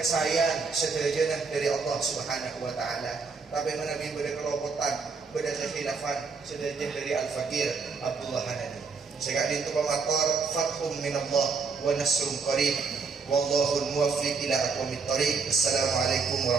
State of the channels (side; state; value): left; quieter; 4.8 dB